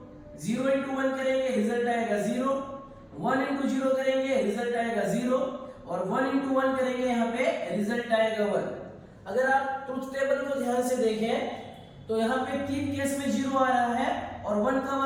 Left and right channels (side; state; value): both; identical; correlation 1.00